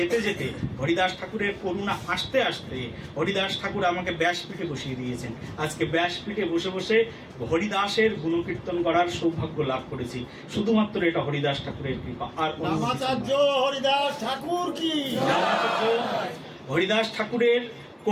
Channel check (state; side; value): identical; both; correlation 1.00